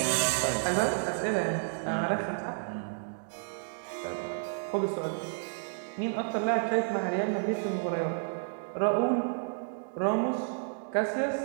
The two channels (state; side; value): silent; left; digital silence